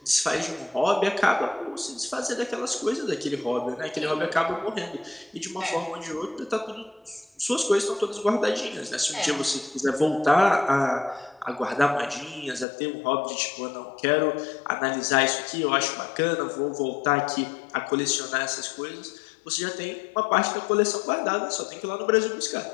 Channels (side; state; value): right; drops out; at 12.7 s